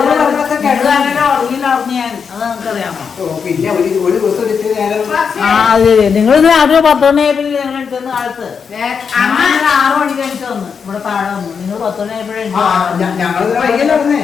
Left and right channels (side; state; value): right; quieter; 6.3 dB